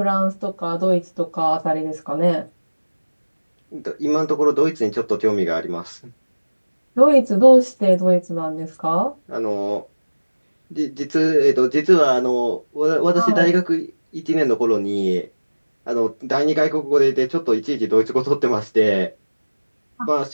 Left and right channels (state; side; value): inverted; both; correlation -1.00